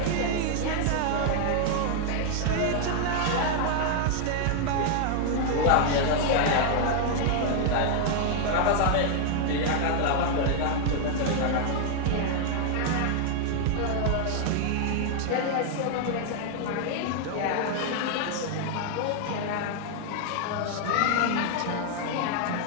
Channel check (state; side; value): different; both; correlation 0.00